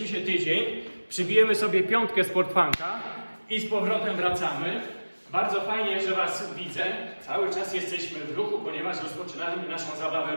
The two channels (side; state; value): both; inverted; correlation -1.00